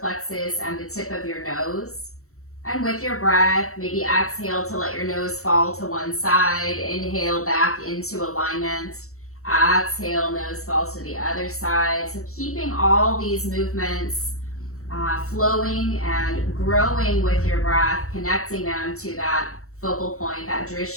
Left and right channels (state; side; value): late; right; 0.64 ms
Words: and the tip of your nose. And with your breath, maybe exhale to let your nose fall to one side. Inhale back into alignment. Exhale, nose falls to the other side. So keeping all these movements flowing and growing with your breath, connecting them to that focal point, that